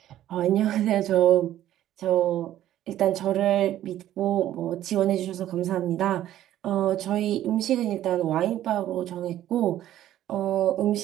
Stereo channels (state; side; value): quieter; left; 12.7 dB